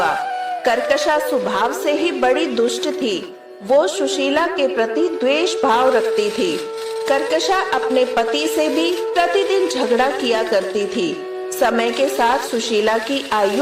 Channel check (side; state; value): both; identical; correlation 1.00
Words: कर्कशा स्वभाव से ही बड़ी दुष्ट थी। वो सुशीला के प्रति द्वेष भाव रखती थी। कर्कशा अपने पति से भी प्रतिदिन झगड़ा किया करती थी। समय के साथ सुशीला की